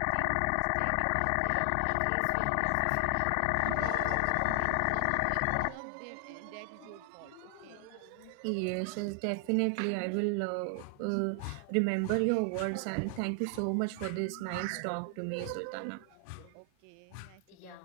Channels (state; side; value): different; both; correlation 0.00